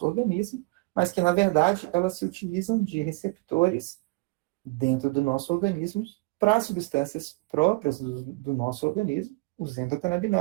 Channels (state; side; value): quieter; left; 25.6 dB